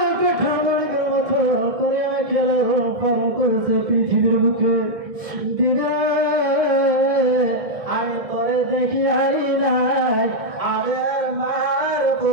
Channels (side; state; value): left; late; 1.6 ms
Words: কাঠামোর মতো করে খেলে পালন করেছে পৃথিবীর বুকে দিদা আমি তোরে দেখি হারি নাই আমার মার